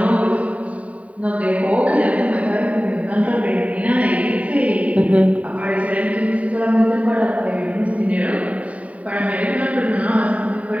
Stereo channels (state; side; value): late; left; 0.068 ms